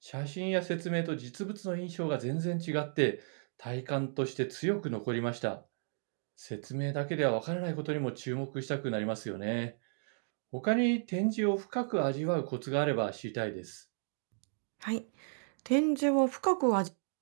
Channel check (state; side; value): silent; left; digital silence